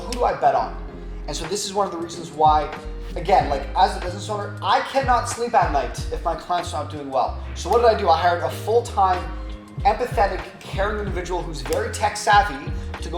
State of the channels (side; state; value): both; identical; correlation 1.00